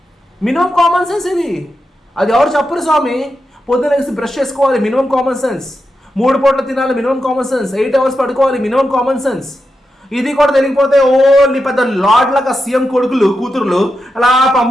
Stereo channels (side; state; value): both; normal; correlation 0.88